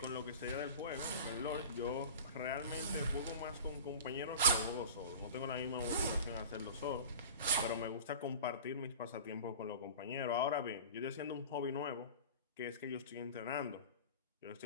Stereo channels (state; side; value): inverted; both; correlation -0.35